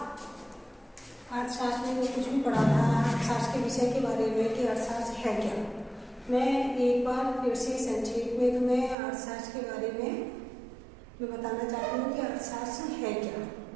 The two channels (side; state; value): left; drops out; at 9.0 s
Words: अर्थशास्त्र में जो कुछ भी पढ़ा था अर्थशास्त्र के विषय के बारे में कि अर्थशास्त्र है क्या, मैं एक बार फिर से संक्षेप में तुम्हें अर्थशास्त्र के बारे में मैं बताना चाहती हूँ कि अर्थशास्त्र है क्या।